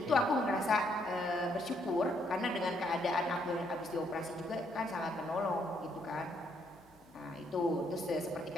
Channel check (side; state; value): left; noise; hum, 29 dB below the sound